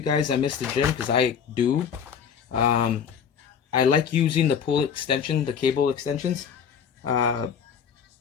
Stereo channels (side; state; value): right; quieter; 7.4 dB